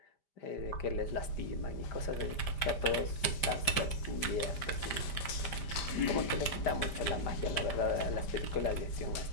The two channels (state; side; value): late; right; 5.1 ms